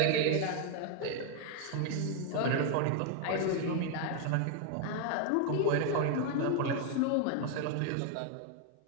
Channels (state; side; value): different; both; correlation 0.01